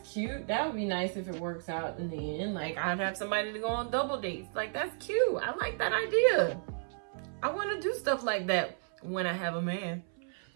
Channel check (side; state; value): left; silent; 56 dB below the other